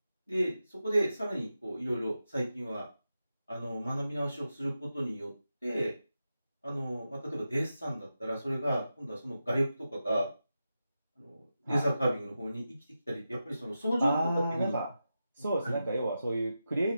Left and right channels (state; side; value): inverted; both; correlation -0.90